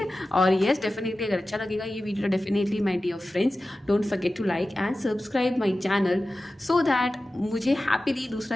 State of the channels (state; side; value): normal; both; correlation 0.95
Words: और येस, डेफिनेटली अगर अच्छा लगेगा ये video, definitely my dear friends don't forget to like and subscribe my channel, so that मुझे हैप्पीली दूसरा